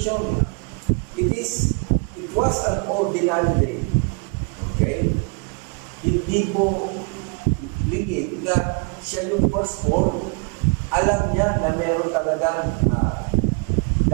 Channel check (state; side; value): quieter; left; 35.7 dB